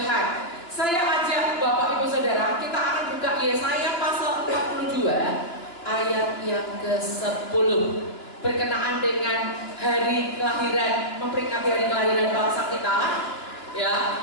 Saya ajak Bapak Ibu Saudara, kita akan buka Yesaya pasal 42 ayat yang ke-10 berkenaan dengan hari kelahiran, memperingati hari kelahiran bangsa kita. Ya,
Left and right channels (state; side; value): late; right; 2.9 ms